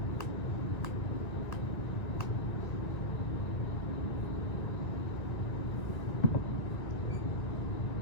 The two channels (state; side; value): late; right; 1.9 ms